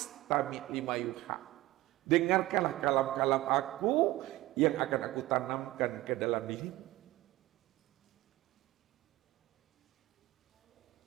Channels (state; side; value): quieter; left; 17.5 dB